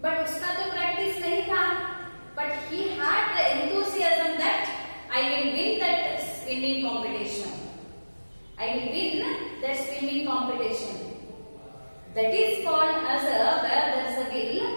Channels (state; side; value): inverted; both; correlation -1.00